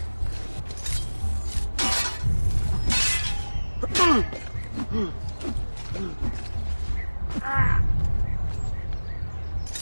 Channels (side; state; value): both; inverted; correlation -1.00